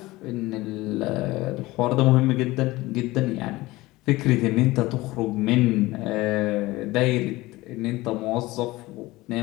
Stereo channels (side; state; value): right; quieter; 19.6 dB